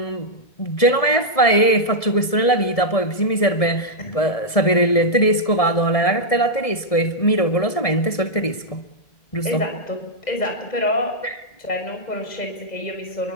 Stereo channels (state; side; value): late; right; 1.7 ms